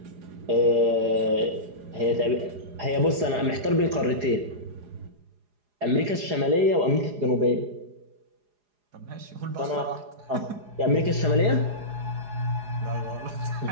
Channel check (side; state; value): left; late; 4.8 ms